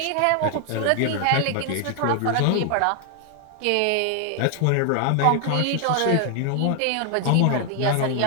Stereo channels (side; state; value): both; different; correlation 0.00